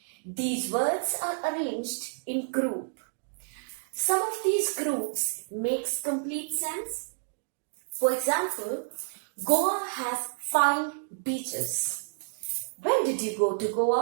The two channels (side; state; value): left; silent; digital silence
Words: These words are arranged in group. Some of these groups makes complete sense. For example, Goa has fine beaches. When did you go to